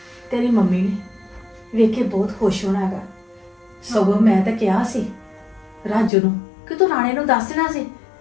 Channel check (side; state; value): right; drops out; at 6.1 s